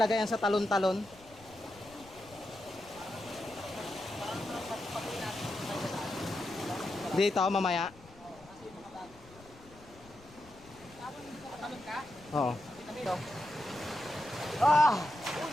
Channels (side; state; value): left; noise; rumble, 22 dB below the sound